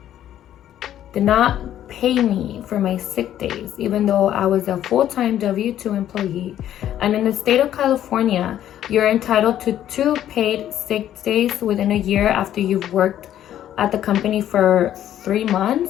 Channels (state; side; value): quieter; right; 11.5 dB